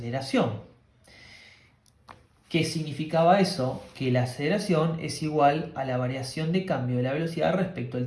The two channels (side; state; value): both; identical; correlation 1.00